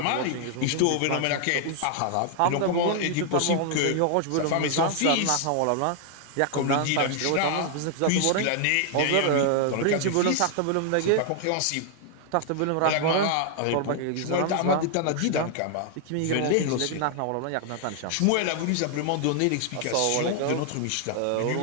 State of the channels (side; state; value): both; different; correlation 0.00